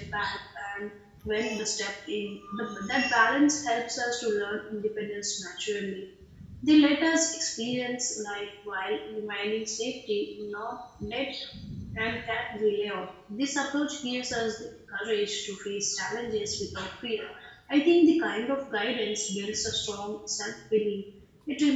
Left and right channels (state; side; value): identical; both; correlation 1.00